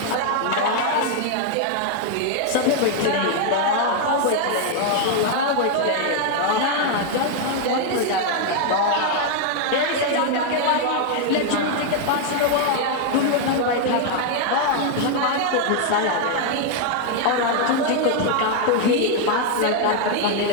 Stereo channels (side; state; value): both; different; correlation 0.00